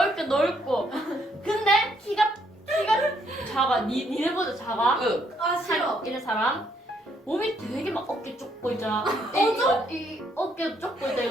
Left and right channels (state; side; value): normal; both; correlation 0.71